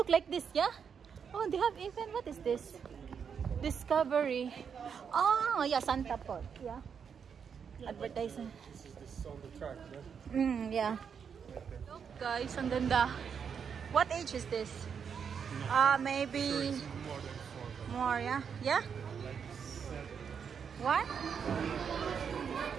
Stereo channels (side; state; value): left; quieter; 6.9 dB